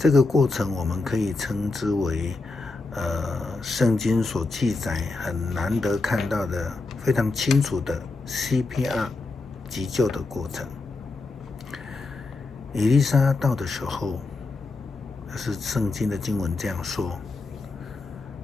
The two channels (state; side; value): quieter; right; 3.5 dB